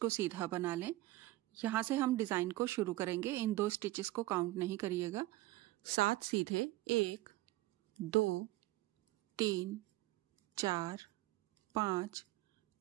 सीधा बना लें। यहां से हम डिजाइन को शुरू करेंगे, इन 2 स्टिचेस को काउंट नहीं करिएगा। 7 सीधे 1 2 3 4 5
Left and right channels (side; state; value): left; quieter; 18.1 dB